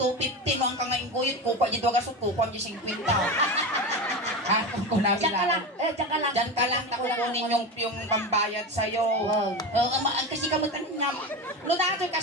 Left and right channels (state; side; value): normal; both; correlation 0.23